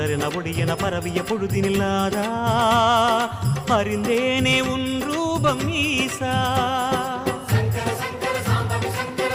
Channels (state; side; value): identical; both; correlation 1.00